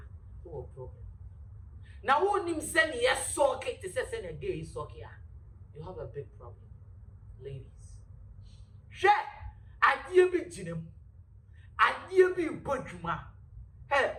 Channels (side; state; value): both; identical; correlation 1.00